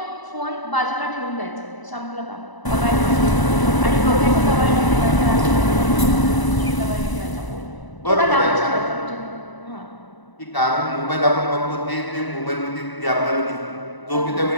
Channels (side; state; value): right; late; 1.0 ms